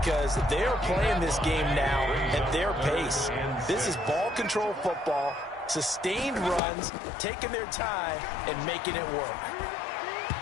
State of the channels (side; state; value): right; drops out; at 6.6 s